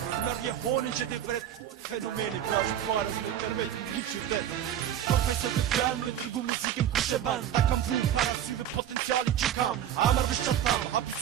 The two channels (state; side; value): quieter; left; 10.5 dB